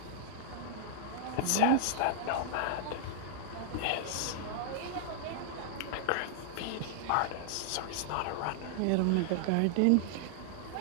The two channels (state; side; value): different; both; correlation -0.01